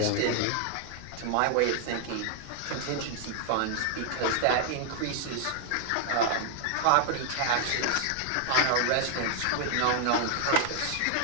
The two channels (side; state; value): both; different; correlation 0.00